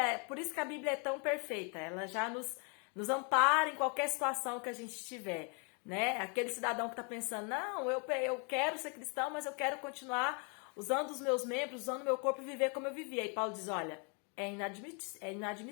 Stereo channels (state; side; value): quieter; right; 36.6 dB